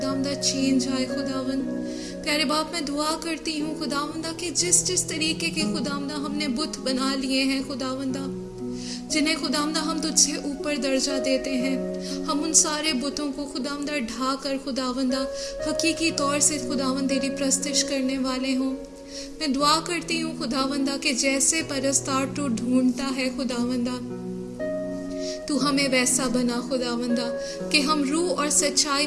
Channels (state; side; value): identical; both; correlation 1.00